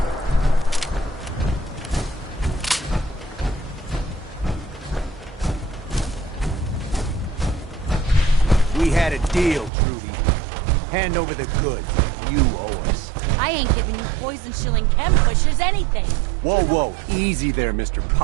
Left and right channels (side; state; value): left; drops out; at 9.7 s